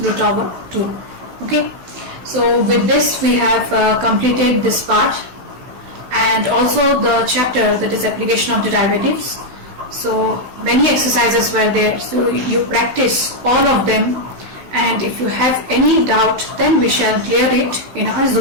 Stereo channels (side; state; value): left; late; 16 ms